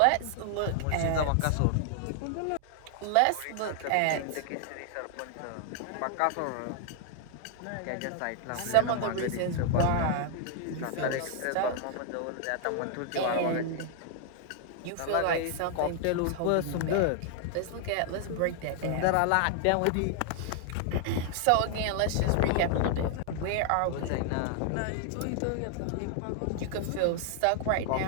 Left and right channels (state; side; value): different; both; correlation 0.00